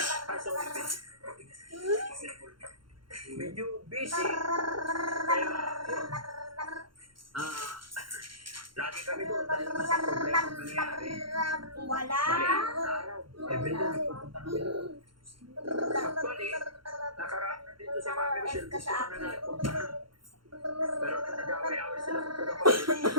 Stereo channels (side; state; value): left; late; 0.73 ms